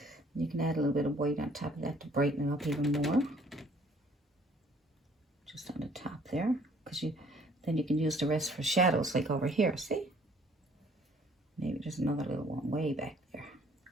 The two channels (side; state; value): both; normal; correlation 0.59